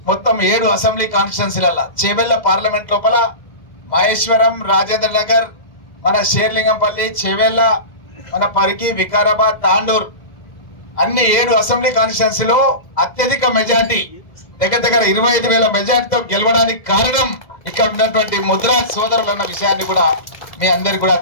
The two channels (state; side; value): late; right; 2.1 ms